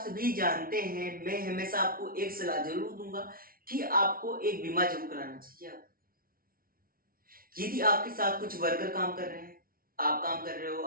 जानते हैं, मैं हमेशा आपको एक सलाह जरूर दूंगा कि आपको एक बीमा जरूर कराना चाहिए। आप यदि आपके साथ कुछ वर्कर काम कर रहे हैं, आप काम कर रहे हो,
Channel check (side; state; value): left; late; 0.43 ms